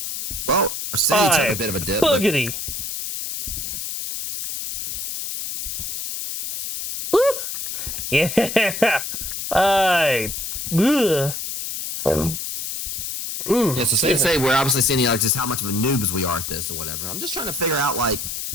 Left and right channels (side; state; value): left; noise; hiss, 5 dB below the sound